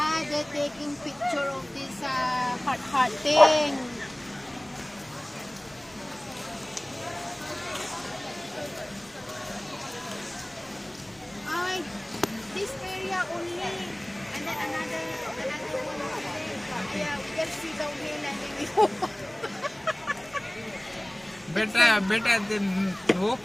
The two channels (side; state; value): right; noise; rumble, 29 dB below the sound